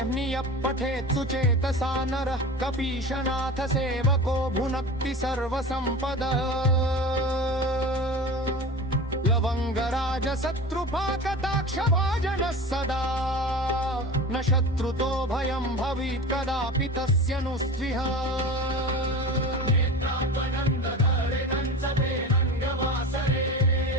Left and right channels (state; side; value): normal; both; correlation 0.32